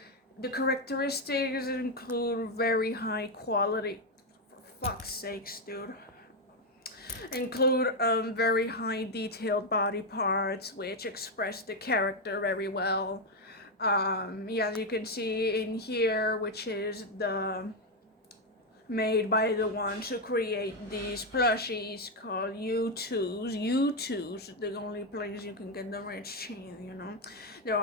The characteristics include very high quality, for fuck's sakes, dude. Include very high detailed body parts which express the character very well. Yeah, as you can see in here, which is the made by the ones who create these plushies called U2s. U2s, the only place you can get the rich cheese, you know. There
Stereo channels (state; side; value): normal; both; correlation 0.05